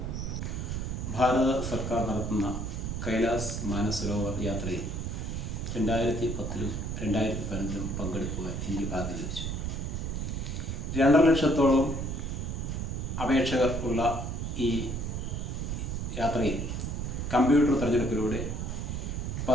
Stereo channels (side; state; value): right; noise; rumble, 3 dB below the sound